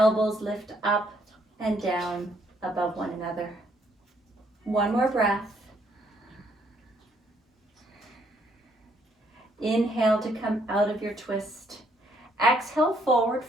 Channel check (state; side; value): normal; both; correlation 0.69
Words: lift up and down above one another. 1 more breath. Inhale to come out of your twist. Exhale, forward